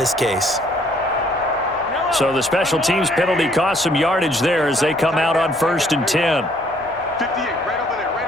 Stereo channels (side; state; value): left; noise; hum, 29 dB below the sound